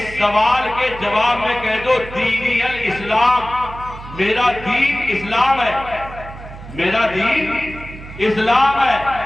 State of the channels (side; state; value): right; noise; hum, 14 dB below the sound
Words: سوال کے جواب میں کہہ دو دینی الاسلام، میرا دین اسلام ہے، میرا دین اسلام ہے۔